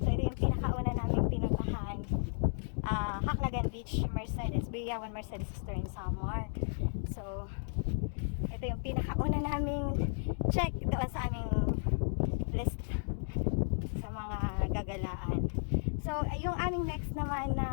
ito yung pinakauna naming pinuntahan. Haclagan Beach, Mercedes, Biyawan Mercedes Store in Samar. So ito yung pinakauna naming check doon sa aming list sa mga gagalaan. So yung aming next naman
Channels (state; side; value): silent; right; digital silence